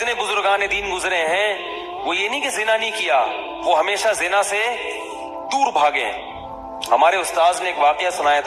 بزرگان دین گزرے ہیں وہ یہ نہیں کہ زنا نہیں کیا، وہ ہمیشہ زنا سے دور بھاگے ہیں. ہمارے استاذ نے ایک واقعہ سنایا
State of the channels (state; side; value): identical; both; correlation 1.00